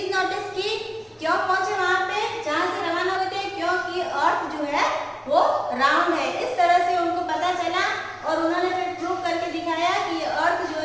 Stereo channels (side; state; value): both; identical; correlation 1.00